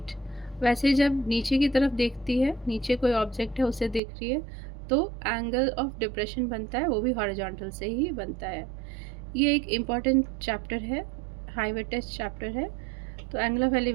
वैसे जब नीचे की तरफ देखती है, नीचे कोई ऑब्जेक्ट है उसे देख रही है, तो एंगल ऑफ डिप्रेशन बनता है, वो भी हॉरिजॉन्टल से ही बनता है। ये एक इम्पॉर्टेंट चैप्टर है, हाईवे टेस्ट चैप्टर है। तो एंगल ऑफ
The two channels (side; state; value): left; drops out; at 4.0 s